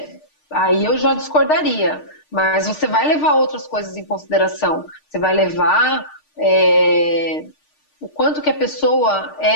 aí eu já discordaria. Mas você vai levar outras coisas em consideração. Você vai levar o quanto que a pessoa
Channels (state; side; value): late; right; 6.6 ms